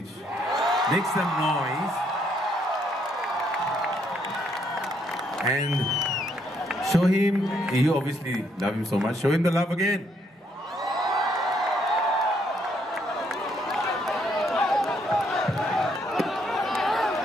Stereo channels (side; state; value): both; normal; correlation 0.72